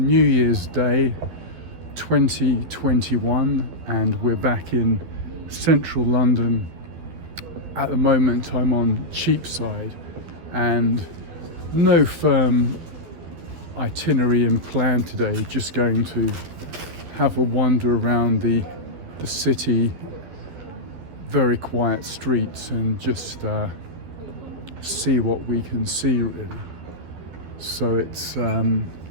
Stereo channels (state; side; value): late; left; 12 ms